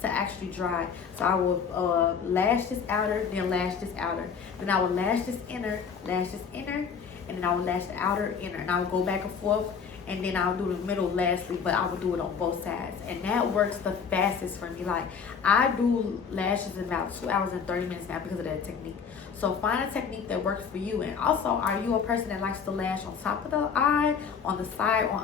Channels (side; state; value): right; quieter; 6.4 dB